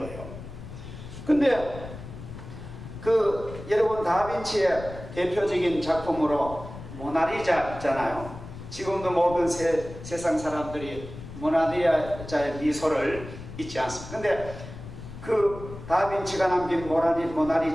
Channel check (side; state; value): left; noise; rumble, 13 dB below the sound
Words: 근데 그 여러분 다빈치의 대표적인 작품으로 모나리자 있잖아요. 지금도 모든 세상 사람들이 모나리자의 미소를 잊지 않습니다. 근데 그 다빈치가 남긴